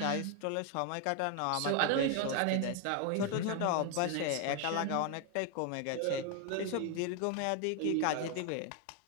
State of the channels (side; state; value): both; different; correlation 0.01